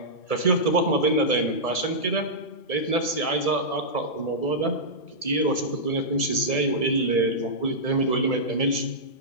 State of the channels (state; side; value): late; right; 1.7 ms